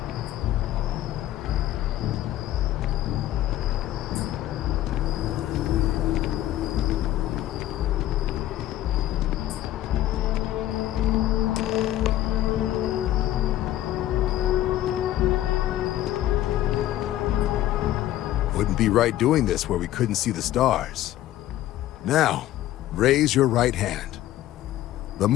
Wouldn't be right doing this where we couldn't see the stars. Now, raise your right hand. The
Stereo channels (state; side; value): quieter; right; 13.8 dB